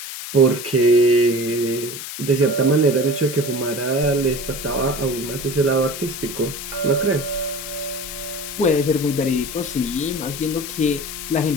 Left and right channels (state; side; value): noise; left; hiss, 9 dB below the sound